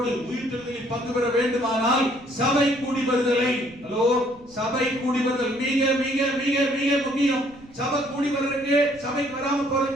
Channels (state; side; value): noise; right; rumble, 25 dB below the sound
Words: உயிர்த்தெழுதலில் பங்கு பெற வேண்டுமானால் சபை கூடி வருதலை, ஹலோ சபை கூடி வருதல் மிக மிக மிக மிக முக்கியம். சபை கூடி வர்றதுக்கு, சபைக்கு வராம